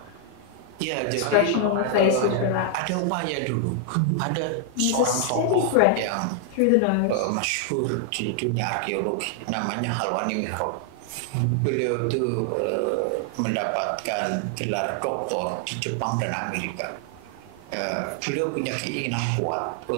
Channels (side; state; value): both; different; correlation 0.00